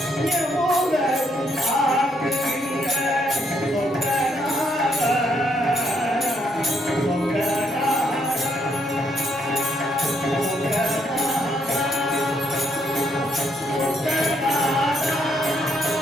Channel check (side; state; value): both; normal; correlation 0.73